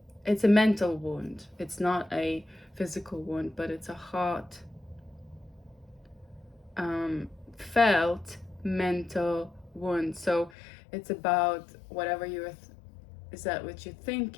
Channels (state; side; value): drops out; right; at 10.5 s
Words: it's a mental wound. It's not a physical wound, but it's a heart felt mental wound. So it's about whatever is that what you're